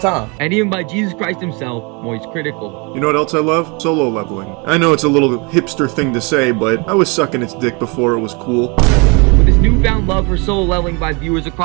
And even by Jesus Christ himself, Moist Critical. You know what else I love? Solo leveling. I know it's a little hipster thing to say, but I was sucking its dick before it was cool. With this newfound love for solo leveling by viewers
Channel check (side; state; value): left; quieter; 30.4 dB